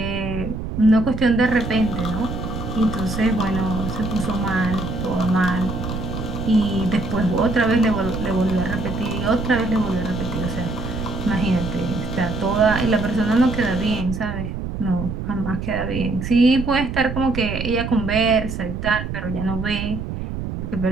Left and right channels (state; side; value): noise; right; rumble, 5 dB below the sound